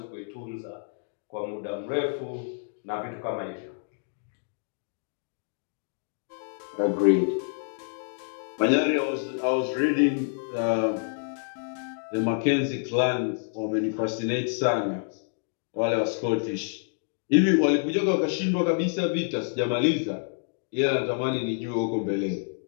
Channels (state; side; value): silent; right; digital silence